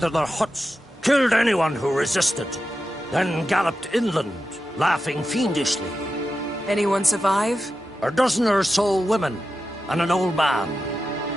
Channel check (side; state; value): both; normal; correlation 0.91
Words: their huts, killed anyone who resisted, then galloped inland, laughing fiendishly. Anyone survive? A dozen or so women and an old man.